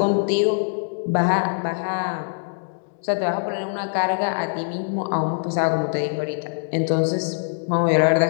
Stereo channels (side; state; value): right; silent; digital silence